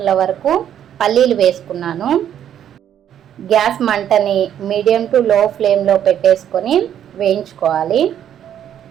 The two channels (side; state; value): left; quieter; 10.0 dB